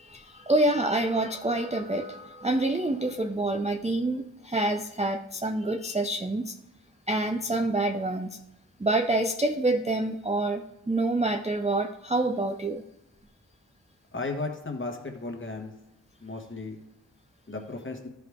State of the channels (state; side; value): normal; both; correlation 0.50